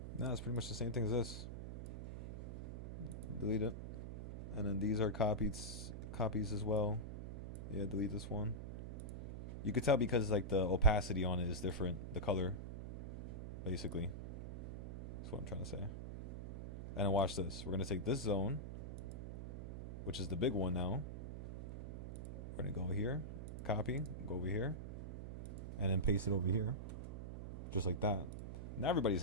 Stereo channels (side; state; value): right; noise; hum, 6 dB below the sound